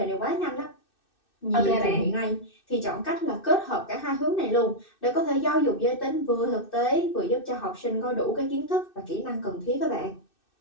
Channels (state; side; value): late; right; 2.6 ms